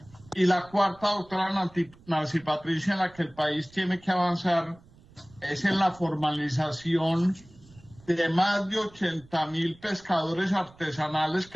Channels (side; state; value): right; noise; rumble, 25 dB below the sound